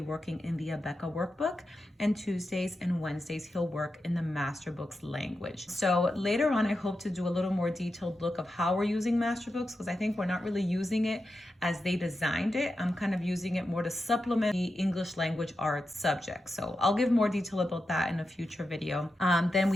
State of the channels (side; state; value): both; normal; correlation 0.89